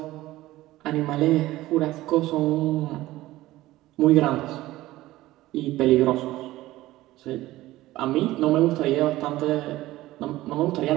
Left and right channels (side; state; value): left; quieter; 16.8 dB